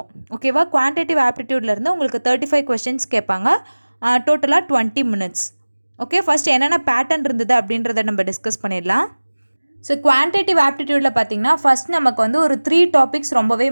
ஓகேவா? குவான்டிட்டிவ் ஆப்டிடியூட்லேருந்து உங்களுக்கு 35 கொஸ்டின்ஸ் கேட்பாங்க. டோட்டலாக 20 minutes. ஓகே, ஃபஸ்ட் என்னென்ன பேட்டர்ன் இருந்தது அப்படின்றத நம்ம டிஸ்கஸ் பண்ணிடலாம். ஸோ குவான்டிட்டிவ் ஆப்டிடியூடில் பார்த்தீங்கன்னா ஃபஸ்ட் நமக்கு வந்து ஒரு 3 டாபிக்ஸ் ரொம்பவே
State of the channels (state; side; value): inverted; both; correlation -1.00